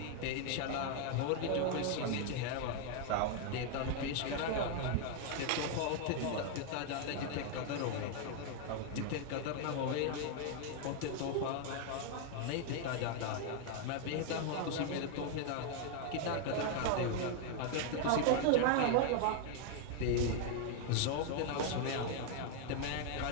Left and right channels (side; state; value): both; different; correlation 0.00